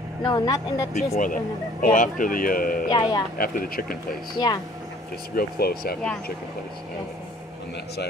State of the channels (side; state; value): both; normal; correlation 0.55